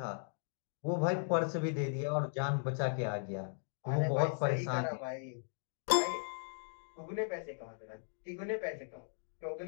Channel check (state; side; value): silent; right; digital silence